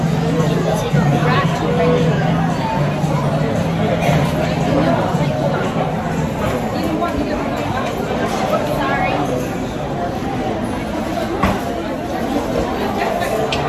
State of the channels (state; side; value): identical; both; correlation 1.00